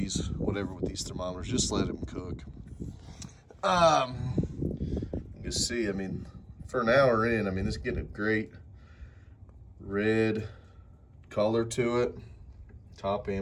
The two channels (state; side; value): identical; both; correlation 1.00